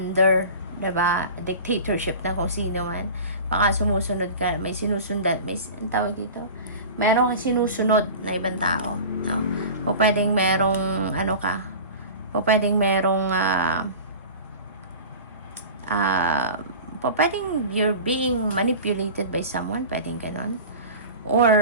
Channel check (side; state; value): both; inverted; correlation -0.36